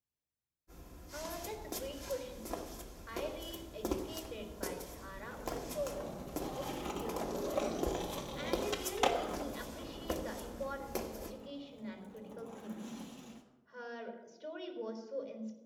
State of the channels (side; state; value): both; identical; correlation 1.00